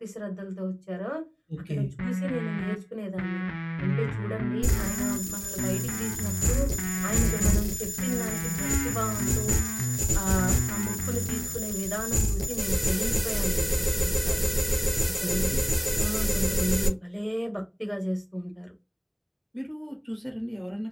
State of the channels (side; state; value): both; identical; correlation 1.00